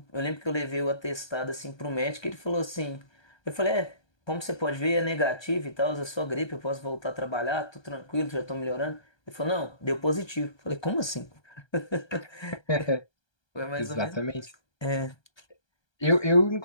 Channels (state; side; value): late; right; 1.3 ms